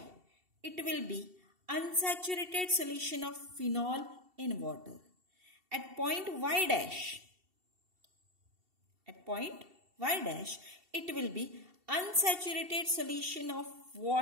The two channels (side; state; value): left; late; 2.7 ms